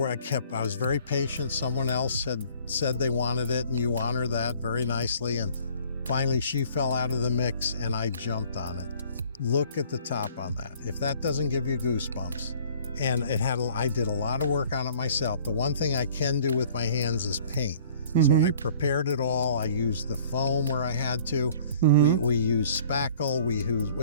I was very patient. Someone else had said they wanted it, and you honor that very nicely. And finally, she fell out of the mix, and I jumped on it. Look at the top on that. If that doesn't give you goosebumps. And I did a lot of work on it myself. The one thing I can do with my hands is paint. So I prepared it all. I used the foam where I had to. We used spackle.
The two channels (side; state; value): both; inverted; correlation -0.53